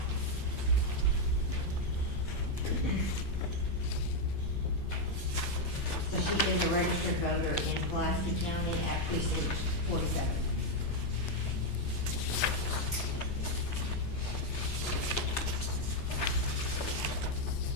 So she is a registered voter in Pulaski County at precinct 47.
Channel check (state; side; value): late; right; 8.8 ms